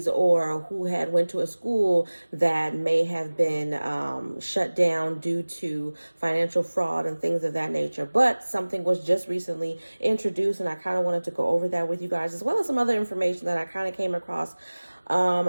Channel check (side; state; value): both; inverted; correlation -1.00